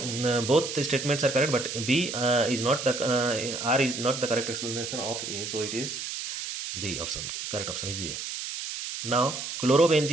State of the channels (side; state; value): right; noise; hiss, 6 dB below the sound